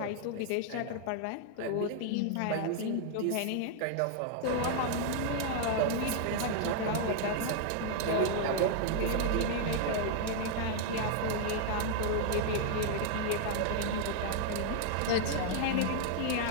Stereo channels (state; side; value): different; both; correlation 0.00